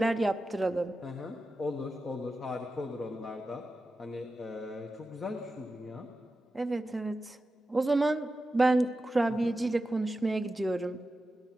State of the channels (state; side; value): normal; both; correlation 0.92